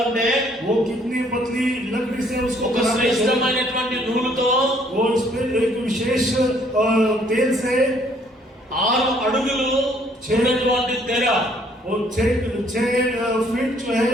అంటే, वो कितनी पतली लकड़ी से उसको ఒక बनाते थे। శ్రేష్టమైనటువంటి నూలుతో वो इस पे एक विशेष तेल से 6 అడుగులు ఉన్నటువంటి తెర, वो 6 फीट जो है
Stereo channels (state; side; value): normal; both; correlation 0.63